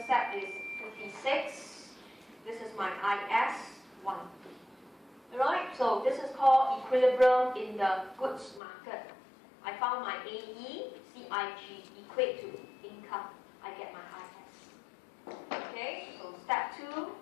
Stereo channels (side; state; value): right; drops out; at 8.6 s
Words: is 56. This is my IS1. Alright, so this is called equilibrium in the goods market. I found my AE, CIG equate to income. I get my IS. Okay, so step 2